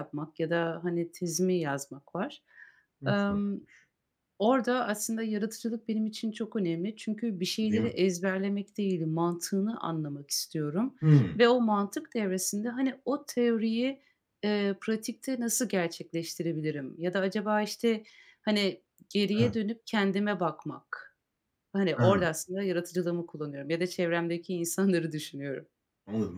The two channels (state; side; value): identical; both; correlation 1.00